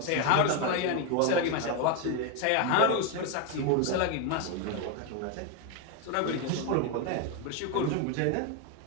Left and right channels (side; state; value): both; different; correlation 0.02